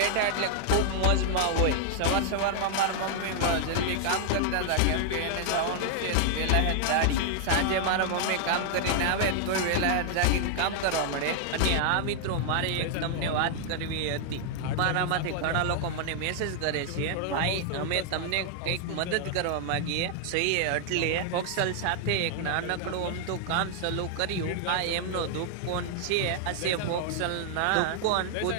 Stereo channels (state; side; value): different; both; correlation -0.01